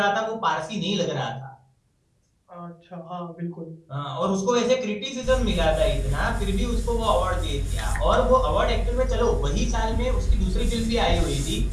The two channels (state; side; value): identical; both; correlation 1.00